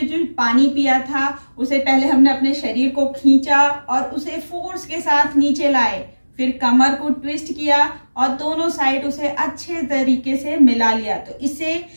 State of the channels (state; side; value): inverted; both; correlation -1.00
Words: पानी पिया था उसे पहले हमने अपने शरीर को खींचा और उसे फोर्स के साथ नीचे लाए, फिर कमर को ट्विस्ट किया और दोनों साइड उसे अच्छे तरीके से मिला लिया। तो इससे